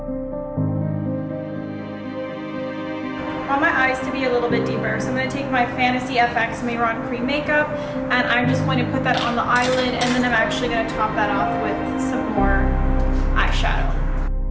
I want my eyes to be a little bit deeper, so I'm going to take my Fantasy FX Mehron cream makeup and I'm just going to put that on the eyelid, and then I'm actually going to top that off with some more eyeshadow.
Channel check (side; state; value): both; identical; correlation 1.00